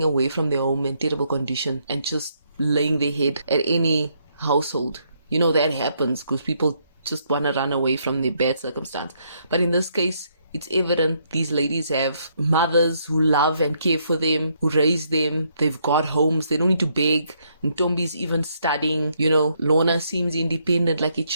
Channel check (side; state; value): both; inverted; correlation -0.73